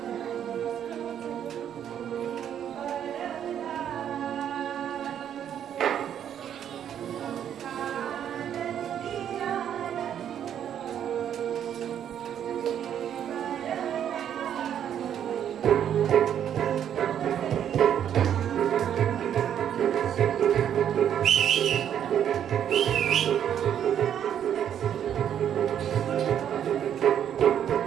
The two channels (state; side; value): quieter; left; 9.5 dB